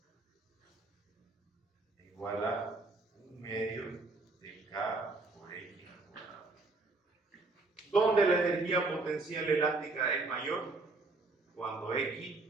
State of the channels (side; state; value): left; quieter; 3.5 dB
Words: Igual a 1/2 de K por X al cuadrado. ¿Dónde la energía potencial elástica es mayor? Cuando